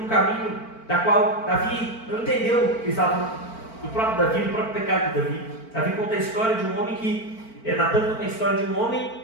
um caminho da qual Davi não entendeu que estava falando do próprio Davi, do próprio pecado de Davi. Davi conta a história de um homem que Natan conta a história de um homem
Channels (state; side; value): late; right; 4.4 ms